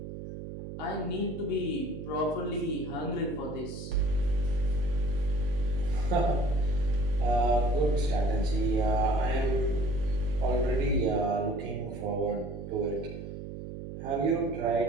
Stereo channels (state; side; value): noise; right; hum, 9 dB below the sound